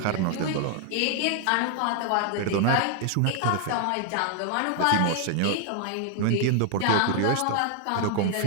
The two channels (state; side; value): different; both; correlation 0.00